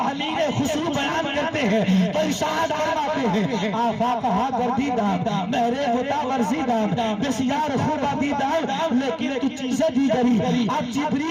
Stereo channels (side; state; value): both; identical; correlation 1.00